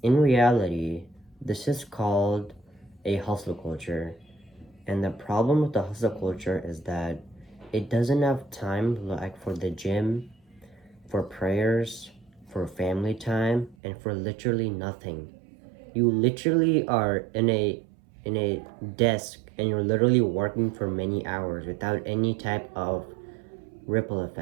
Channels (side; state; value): left; drops out; at 13.8 s